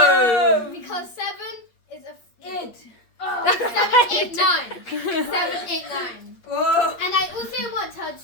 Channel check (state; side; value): late; right; 8.5 ms